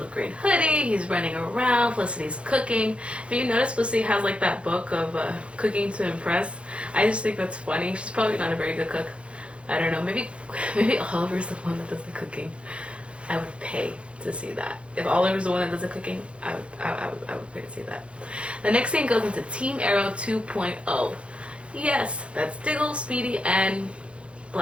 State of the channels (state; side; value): late; left; 0.060 ms